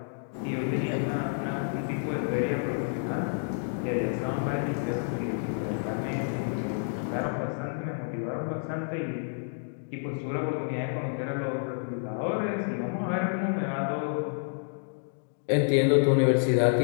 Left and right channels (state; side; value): silent; right; digital silence